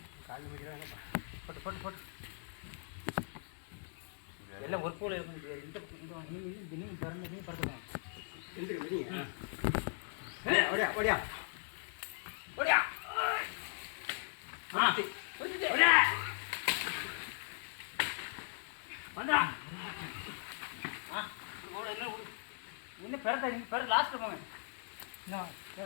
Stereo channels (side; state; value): right; silent; digital silence